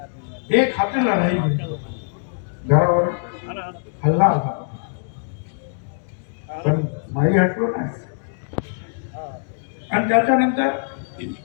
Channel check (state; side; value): silent; right; digital silence